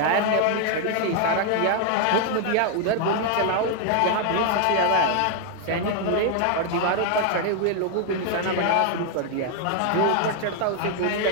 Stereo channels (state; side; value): different; both; correlation 0.00